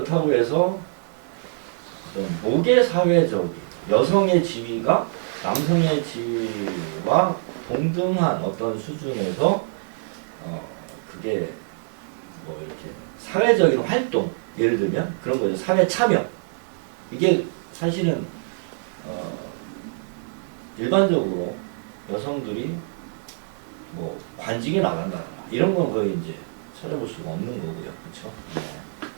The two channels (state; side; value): silent; left; digital silence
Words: 해서 어떤 모계 사회적인 여성의 지위가 남성의 지위와 동등한 어떤 수준에서 그게 뭐 이렇게 사회적인 활동, 예를 들면 그런 거죠. 사회 참여. 이게 사실은 일반적으로 여성들이 뭐 관직에 나간다거나 이런 건 거의 이제 찾아볼 수가 없는 거고요. 그렇죠?